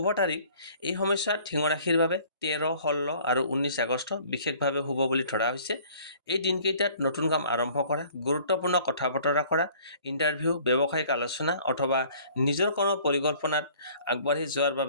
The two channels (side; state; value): both; inverted; correlation -0.53